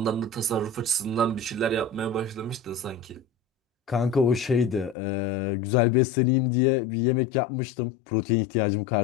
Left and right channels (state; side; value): drops out; right; at 5.0 s